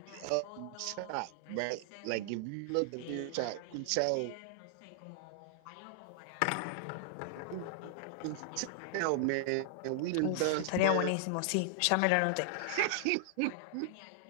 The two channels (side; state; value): both; different; correlation -0.01